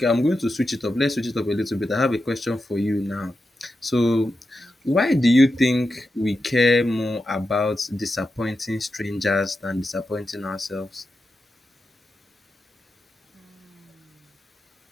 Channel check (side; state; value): both; normal; correlation 0.89